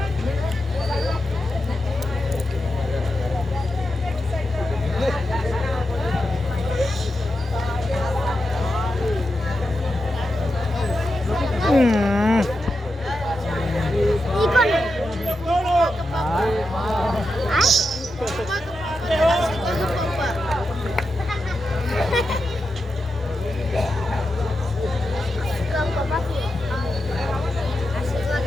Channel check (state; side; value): normal; both; correlation 0.88